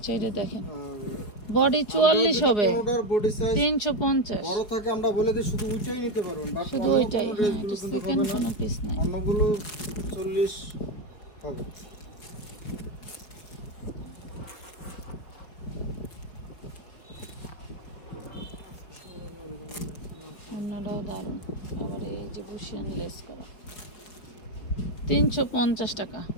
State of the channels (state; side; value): late; right; 4.7 ms